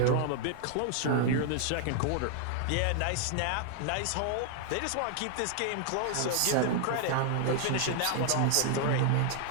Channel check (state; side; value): different; both; correlation 0.00